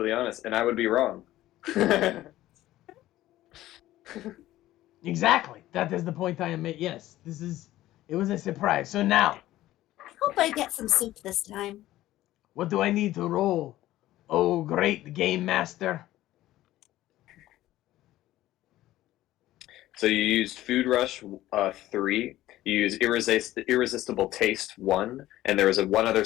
honest, and I would be wrong. Exactly. That is the point I am making. Yes, it was a surprise. So now, I hope I get some soup this time. what do I need to roll? Oh, great game master. So you used Food Rush 3. You used Irresistible Taste 1, and there was one other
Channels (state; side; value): quieter; right; 15.1 dB